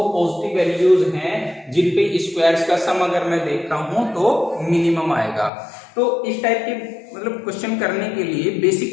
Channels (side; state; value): right; drops out; at 5.5 s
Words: पॉजिटिव वैल्यूज हैं जिन पे स्क्वायर्स का सम अगर मैं देख रहा हूं तो मिनिमम आएगा। तो इस टाइप के मतलब क्वेश्चन करने के लिए